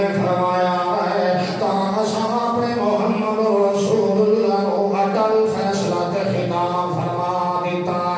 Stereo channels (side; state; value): both; identical; correlation 1.00